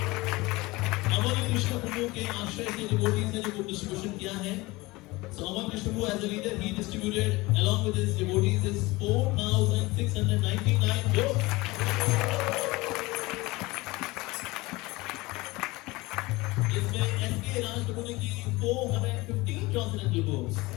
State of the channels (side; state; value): right; quieter; 21.8 dB